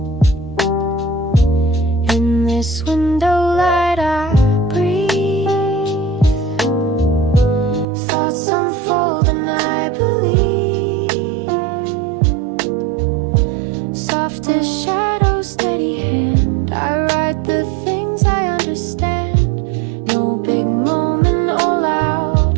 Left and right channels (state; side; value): drops out; left; at 7.9 s